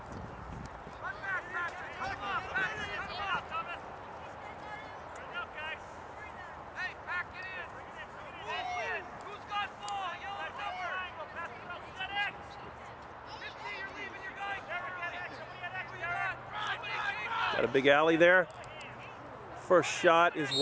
Got a big alley there. First shot is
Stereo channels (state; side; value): identical; both; correlation 1.00